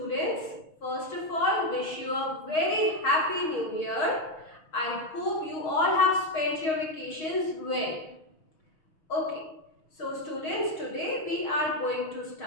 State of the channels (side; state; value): right; late; 6.4 ms